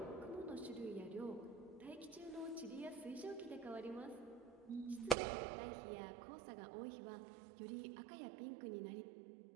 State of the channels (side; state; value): left; drops out; at 5.2 s